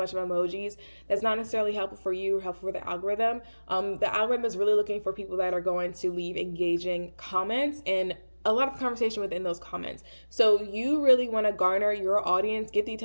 of emojis. That's not necessarily helpful for you or helpful for the algorithm. The algorithm is really looking for people that are going to leave engaging comments and a lot of conversation within those comments. So you really want to garner your audience, get the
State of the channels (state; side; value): inverted; both; correlation -1.00